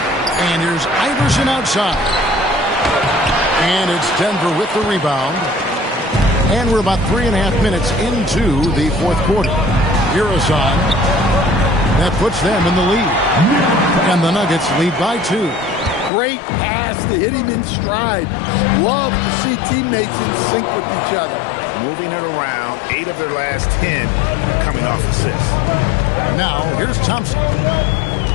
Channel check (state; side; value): drops out; right; at 16.1 s